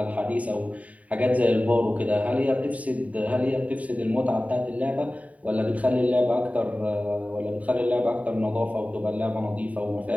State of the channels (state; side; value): late; left; 0.069 ms